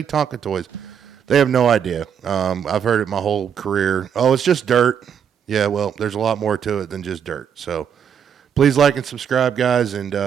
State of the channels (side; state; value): left; quieter; 8.0 dB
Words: Tonka toys. They have no idea. I've heard it my whole career. Oh, it's just dirt. Yeah, well, there's a lot more to it than just dirt. So please like and subscribe, guys, and